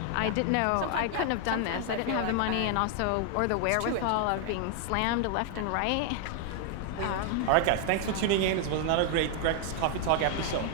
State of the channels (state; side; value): different; both; correlation 0.00